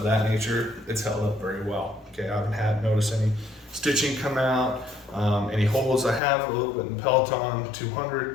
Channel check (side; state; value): right; drops out; at 6.2 s